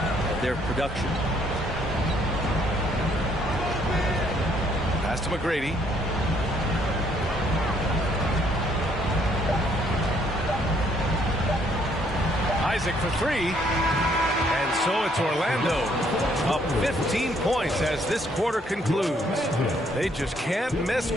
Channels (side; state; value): both; normal; correlation 0.67